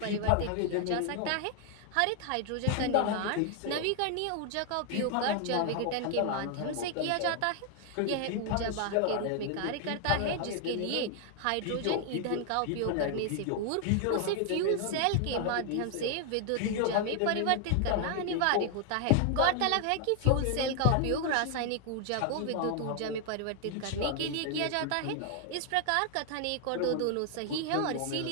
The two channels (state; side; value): different; both; correlation 0.00